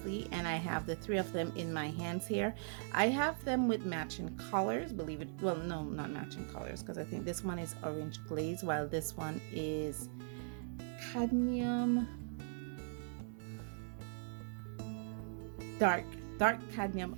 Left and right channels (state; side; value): silent; left; digital silence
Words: and I have the 3 of them in my hands here. I have them with matching colors, believe it, well, no, not matching colors, because I think this one is orange glaze, while this one is cadmium, dark cadmium